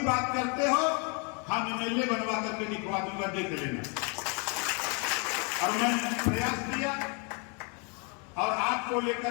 बात करते हो, हम एमएलए बनवा करके दिखवा दूंगा, देख लेना। और मैंने प्रयास किया, और आपको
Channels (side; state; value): right; quieter; 35.1 dB